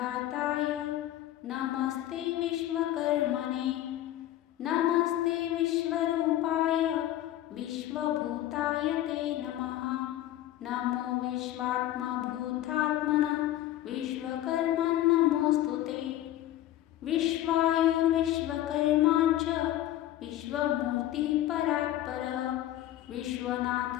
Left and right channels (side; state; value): right; quieter; 13.6 dB